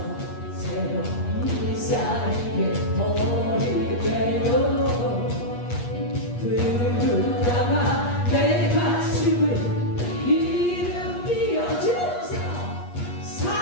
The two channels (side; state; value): right; late; 8.4 ms